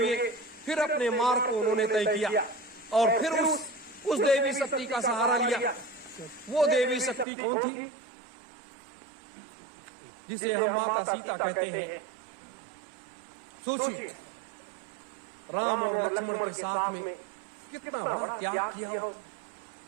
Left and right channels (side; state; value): left; drops out; at 7.2 s